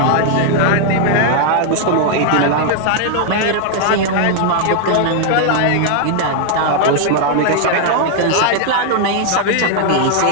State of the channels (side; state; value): both; different; correlation 0.00